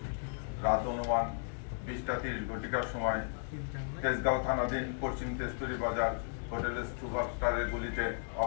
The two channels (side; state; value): right; silent; digital silence